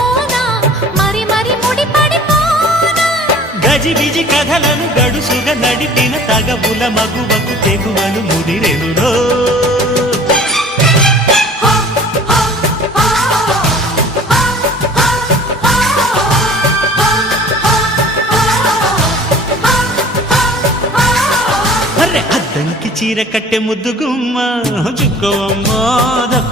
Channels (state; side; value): normal; both; correlation 0.46